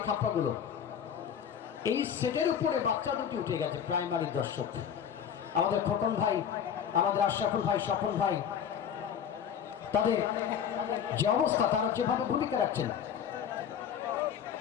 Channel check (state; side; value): quieter; right; 8.3 dB